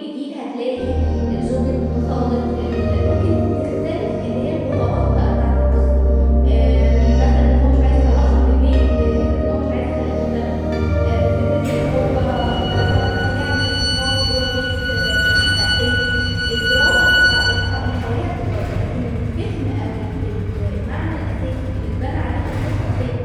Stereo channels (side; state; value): both; identical; correlation 1.00